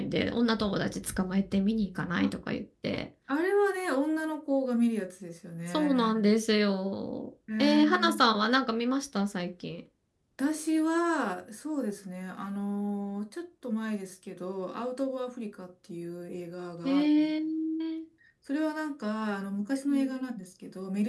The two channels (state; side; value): identical; both; correlation 1.00